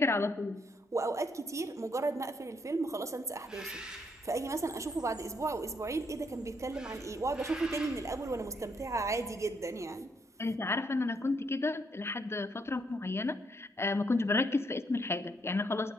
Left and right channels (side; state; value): both; normal; correlation 0.73